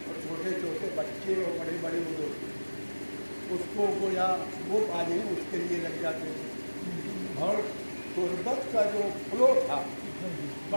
اور چھوٹے چھوٹے بچے اور بڑے بڑے لوگ اس کو گویا وہ پانے اس کے لیے لگ جاتے تھے، اور قربت کا جو فلو تھا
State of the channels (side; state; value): both; inverted; correlation -1.00